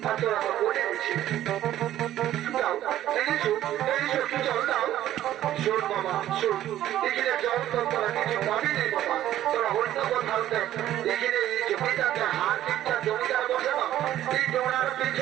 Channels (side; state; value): left; quieter; 12.8 dB